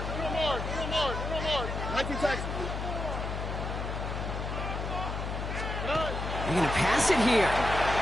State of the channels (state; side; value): noise; left; hum, 4 dB below the sound